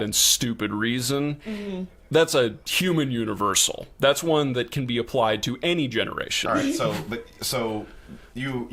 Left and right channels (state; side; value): identical; both; correlation 1.00